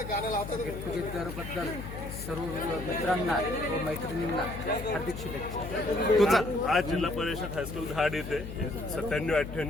गेट टुगेदरबद्दल सर्व मित्रांना व मैत्रिणींना हार्दिक शुभेच्छा. आज जिल्हा परिषद हायस्कूल धाड येथे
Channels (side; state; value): left; noise; hum, 9 dB below the sound